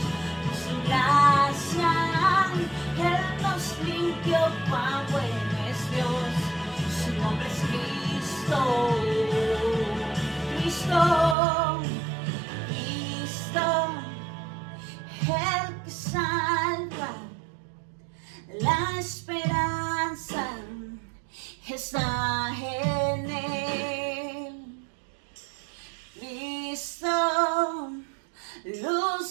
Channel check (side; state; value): left; drops out; at 11.4 s